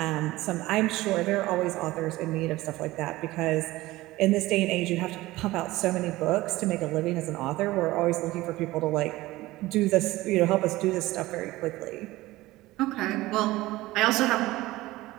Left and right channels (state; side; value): quieter; left; 18.3 dB